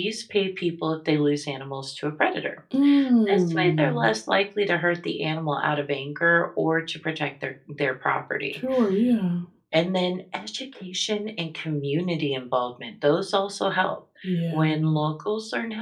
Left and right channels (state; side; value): identical; both; correlation 1.00